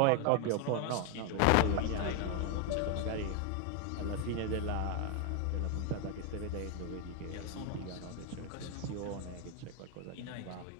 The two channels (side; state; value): both; different; correlation 0.01